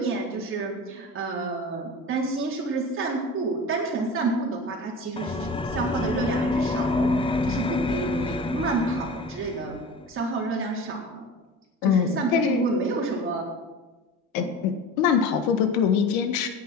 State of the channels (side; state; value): both; normal; correlation 0.34